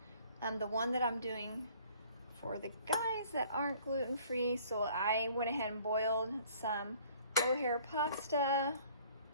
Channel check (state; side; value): inverted; both; correlation -0.55